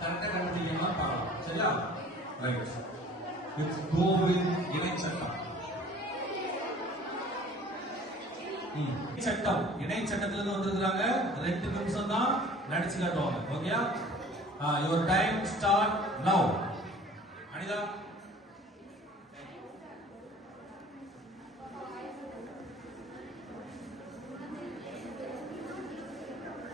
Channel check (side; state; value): both; normal; correlation 0.48